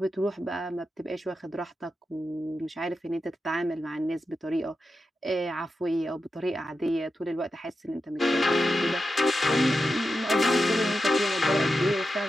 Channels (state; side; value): normal; both; correlation 0.90